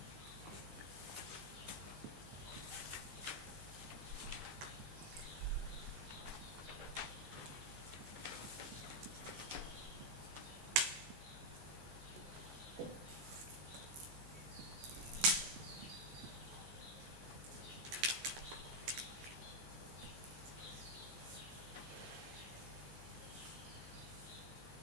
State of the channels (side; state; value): left; late; 14 ms